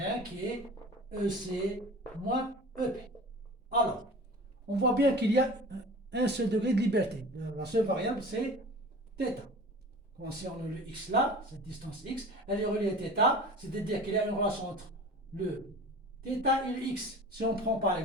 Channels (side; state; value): both; normal; correlation 0.39